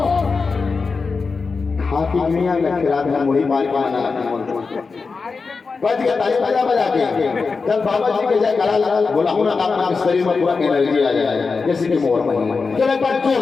हाथी दुनिया में खिला था मुड़ी मार के आना बच गया ताली बजा बजा के जब बाबा जी के जाए गला लगा बोला हूं ना आपके शरीर में पूरा एनर्जी आ जाए जैसे कि मोर में चलो एक बार जोर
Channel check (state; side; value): quieter; right; 4.6 dB